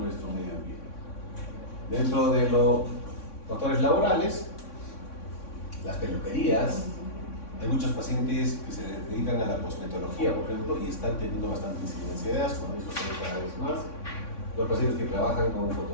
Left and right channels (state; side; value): late; right; 3.6 ms